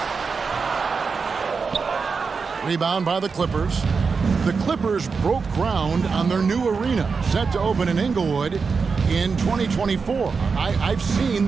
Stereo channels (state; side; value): quieter; left; 5.1 dB